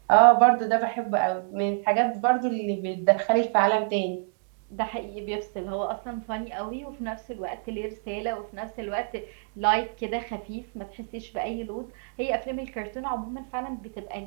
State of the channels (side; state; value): left; silent; digital silence